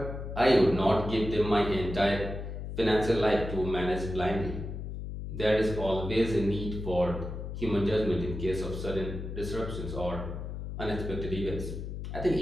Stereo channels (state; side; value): noise; left; hum, 7 dB below the sound